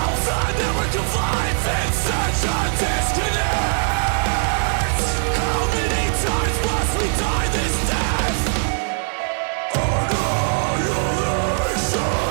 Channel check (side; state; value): left; silent; 56 dB below the other